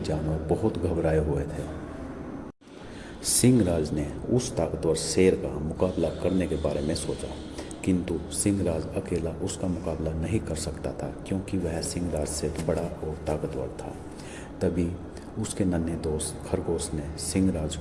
बहुत घबराए हुए थे। सिंहराज ने उस ताकतवर शेर का मुकाबला करने के बारे में सोचा, किंतु सिंहराज अकेला उसका मुकाबला नहीं कर सकता था क्योंकि वह सिंहराज से बड़ा और ताकतवर था। तभी उसके नन्हे दोस्त खरगोश ने सिंहराज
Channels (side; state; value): both; identical; correlation 1.00